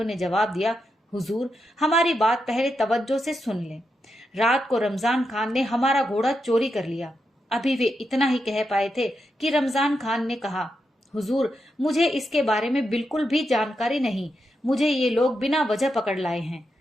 ने जवाब दिया, हुजूर, हमारी बात पहले तवज्जो से सुन लें। रात को रमजान खान ने हमारा घोड़ा चोरी कर लिया। अभी वे इतना ही कह पाए थे कि रमजान खान ने कहा, हुजूर, मुझे इसके बारे में बिल्कुल भी जानकारी नहीं, मुझे ये लोग बिना वजह पकड़ लाए हैं।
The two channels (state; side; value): normal; both; correlation 0.85